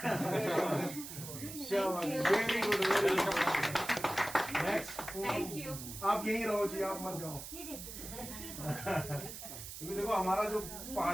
Very good, very good. Next, आप यहीं रहो जी, आप मत जाओ। क्योंकि देखो हमारा जो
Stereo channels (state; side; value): noise; right; hiss, 10 dB below the sound